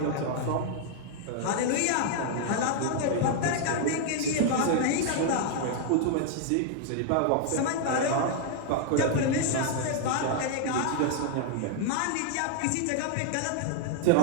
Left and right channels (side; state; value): both; different; correlation 0.00